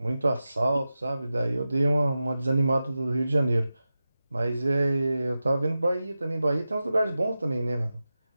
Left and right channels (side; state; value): both; inverted; correlation -0.93